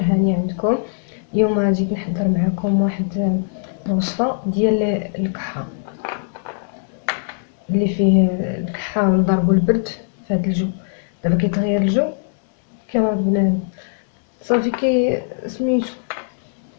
هاني عندكم. اليوم جيت نحضر معكم واحد الوصفه ديال الكحه اللي فيه الكحه ونضربو البرد في هذا الجو. دابا كيتغير الجو كما بنادم صافي كي سميتو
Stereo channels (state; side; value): silent; right; digital silence